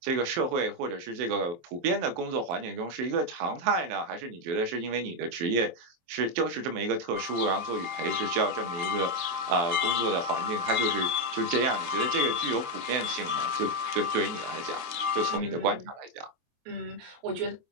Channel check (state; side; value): late; left; 23 ms